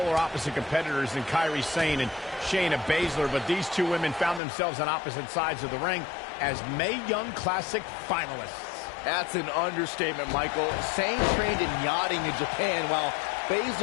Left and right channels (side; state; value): right; drops out; at 4.4 s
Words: opposite competitors than Kairi Sane and Shayna Baszler, but these two women found themselves on opposite sides of the ring as Mae Young Classic finalists. That's an understatement, Michael. Sane trained in yachting in Japan, while